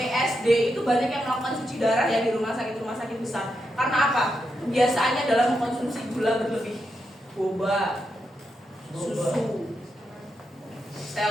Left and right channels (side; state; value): both; normal; correlation 0.84